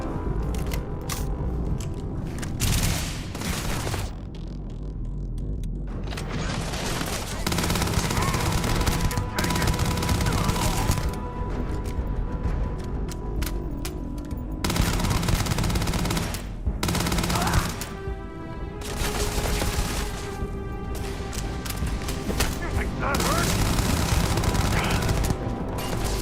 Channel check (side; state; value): both; identical; correlation 1.00